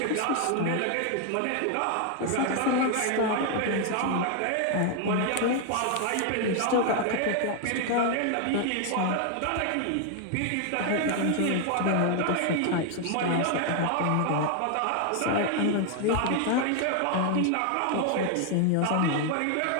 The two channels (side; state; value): both; different; correlation 0.00